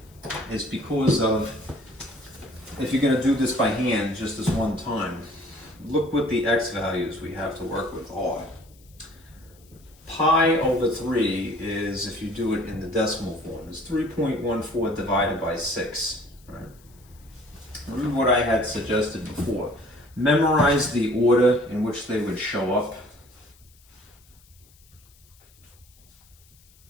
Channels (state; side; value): noise; left; hiss, 29 dB below the sound